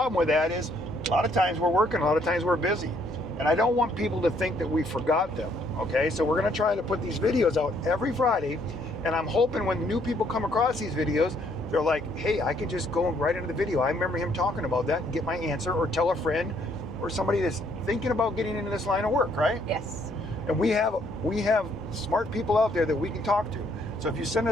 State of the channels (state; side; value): noise; left; hum, 18 dB below the sound